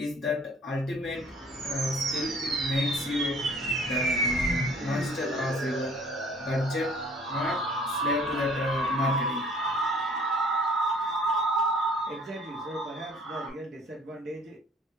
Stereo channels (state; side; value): normal; both; correlation 0.54